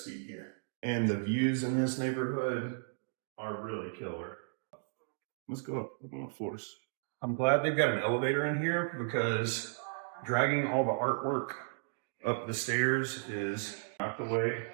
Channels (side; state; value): left; silent; digital silence